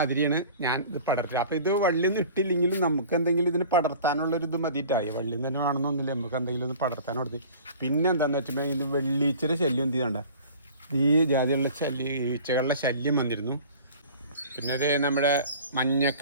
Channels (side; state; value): both; inverted; correlation -0.44